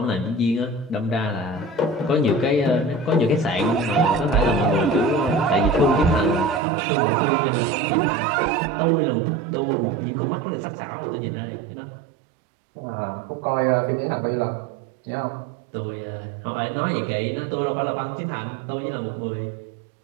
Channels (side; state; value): left; drops out; at 6.6 s